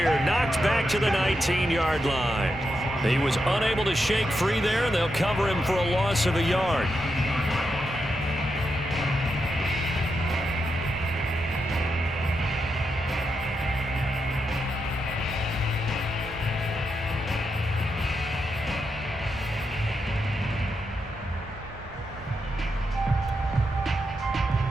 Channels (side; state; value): both; normal; correlation 0.85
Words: Knocked back to the 19-yard line. He was unable to shake free there, and they'll cover him for a loss of a yard.